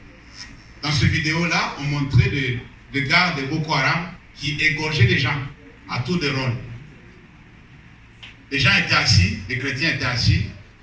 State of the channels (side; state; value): both; identical; correlation 1.00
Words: Dans cette vidéo-là, on montrait des gars de Boko Haram qui égorgeaient les gens à tour de rôle. Les gens étaient assis, les chrétiens étaient assis